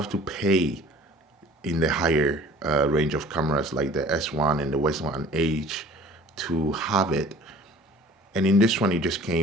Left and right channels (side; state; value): both; normal; correlation 0.49